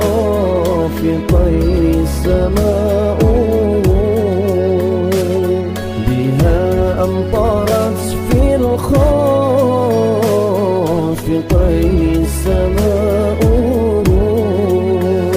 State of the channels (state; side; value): identical; both; correlation 1.00